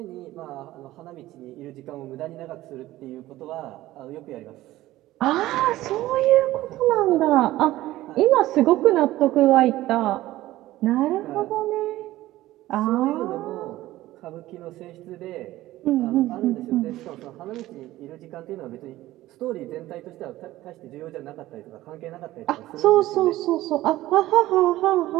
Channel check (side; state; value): left; quieter; 16.1 dB